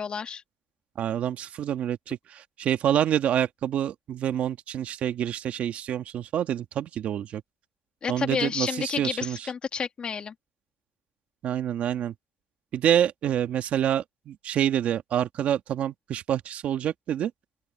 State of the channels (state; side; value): quieter; left; 7.4 dB